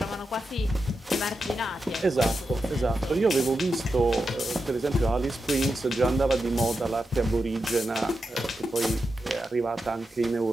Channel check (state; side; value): normal; both; correlation 0.88